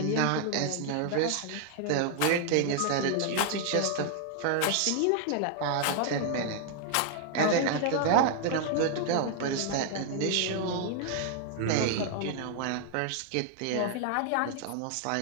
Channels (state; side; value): different; both; correlation 0.00